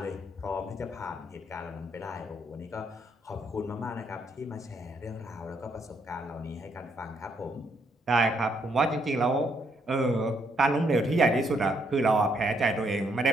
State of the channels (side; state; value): both; normal; correlation 0.73